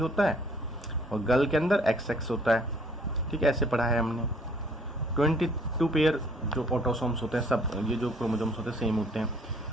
है और गर्ल के अंदर XX होता है, ठीक है, ऐसे पढ़ा है हमने। 22 पेयर जो ऑटोसोम्स होते हैं, सब ये जो क्रोमोसोम्स होते हैं सेम होते हैं।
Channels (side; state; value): both; normal; correlation 0.60